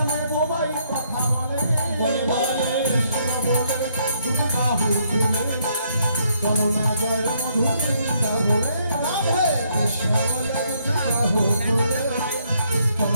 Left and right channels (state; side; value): inverted; both; correlation -0.71